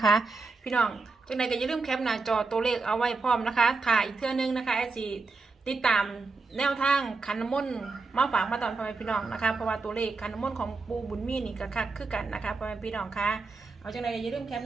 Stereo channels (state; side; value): quieter; left; 4.0 dB